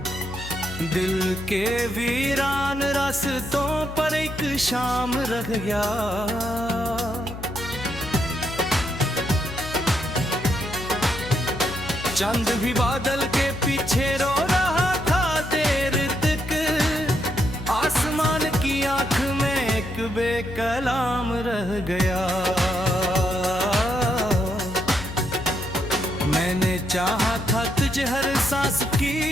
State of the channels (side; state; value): left; noise; hum, 11 dB below the sound